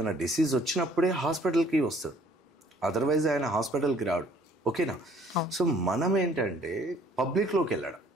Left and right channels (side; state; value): both; normal; correlation 0.59